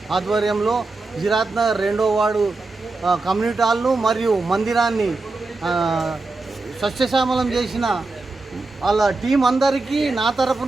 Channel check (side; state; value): left; quieter; 3.4 dB